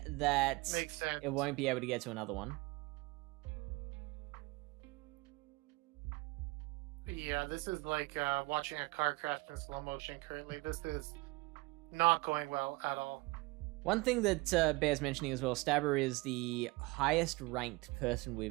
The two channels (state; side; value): quieter; left; 23.6 dB